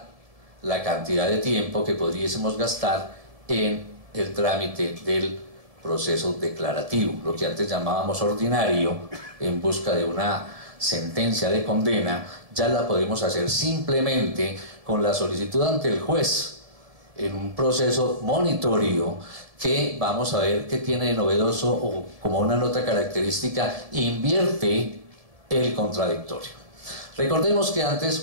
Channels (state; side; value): late; left; 1.7 ms